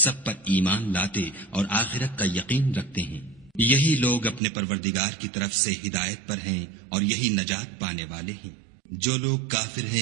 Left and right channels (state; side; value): drops out; left; at 4.4 s